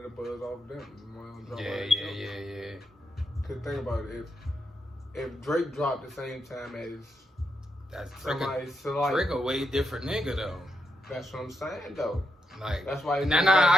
the buzz off them. Yeah. Cause think about it, if Drake dropped the same time as Drake a way different nigga though. That's what I'm saying though. Like, that's why.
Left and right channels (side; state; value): both; normal; correlation 0.82